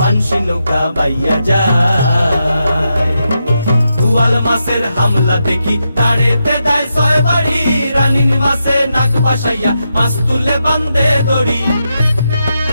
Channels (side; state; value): both; inverted; correlation -0.85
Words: নৌকা বাইয়া যায় বুয়াল মাসের হামলা দেখি তাড়েতে দেয় ছয় বাড়ি রানীর মাসে নাক বাসাইয়া মাছ তুলে বান্ধে দড়ি